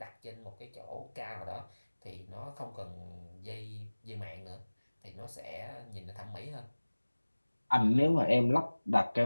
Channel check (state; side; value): inverted; both; correlation -1.00